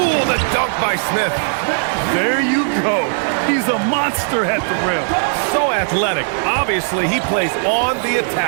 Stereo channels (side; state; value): left; silent; 57 dB below the other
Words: the dunk by Smith. There you go. He's a monster at the rim. So athletic. Obviously, he plays on the